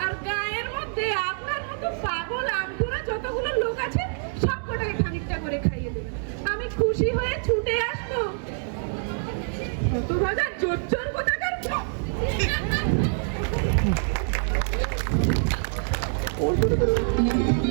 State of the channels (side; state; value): left; silent; digital silence